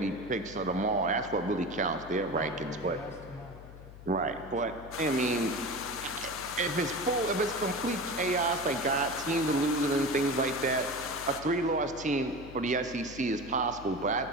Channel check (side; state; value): left; noise; hum, 16 dB below the sound